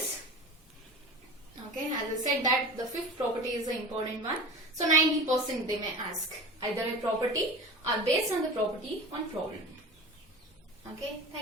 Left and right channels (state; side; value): normal; both; correlation 0.35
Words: Okay, as I said that the 5th property is the important one. So 90% they may ask either a property or based on the property one problem. Okay,